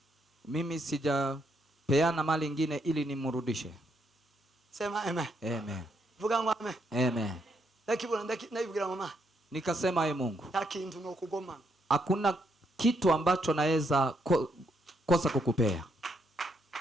Mimi sijapeana mali ingine ili nimrudishe. sema amen. Amen. Vuga ngo amen. Amen. Ndakibwira mama, Nikasema ye Mungu, takintu no kugoma, hakuna kitu ambacho naweza kosa kukupea.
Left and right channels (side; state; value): both; normal; correlation 0.76